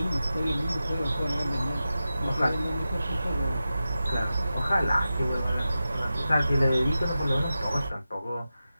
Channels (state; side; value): inverted; both; correlation -0.93